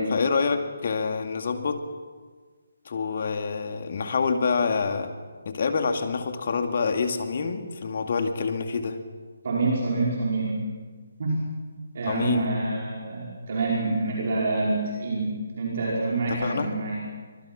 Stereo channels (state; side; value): inverted; both; correlation -0.76